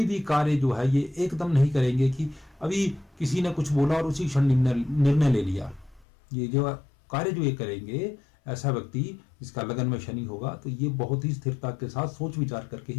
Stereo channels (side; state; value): right; drops out; at 6.1 s